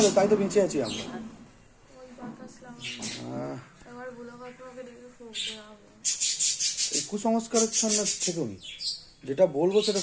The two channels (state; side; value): identical; both; correlation 1.00